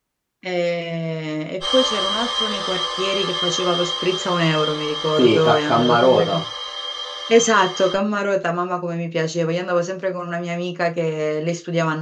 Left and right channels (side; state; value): both; identical; correlation 1.00